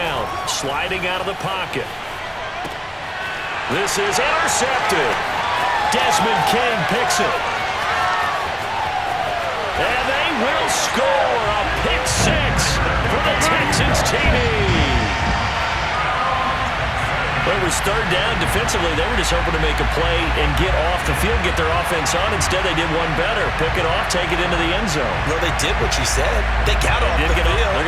Sliding out of the pocket. This is intercepted. Desmond King picks it. And they will score a pick 6 for the Texans TD. Well, it was 3rd down. Defensively, they were just hoping to make a play and get off the field, get their offense on. Instead, they did one better. Pick it off, take it into the end zone. Well, they did what you said. They got off the field. They're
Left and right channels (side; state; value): both; identical; correlation 1.00